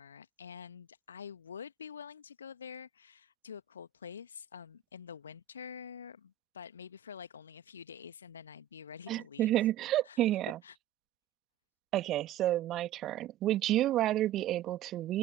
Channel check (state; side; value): quieter; left; 11.3 dB